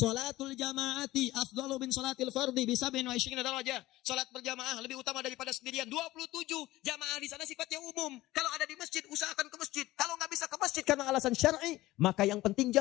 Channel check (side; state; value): right; quieter; 17.3 dB